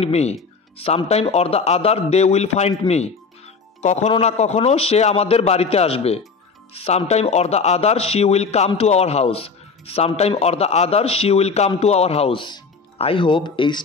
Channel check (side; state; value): right; quieter; 4.8 dB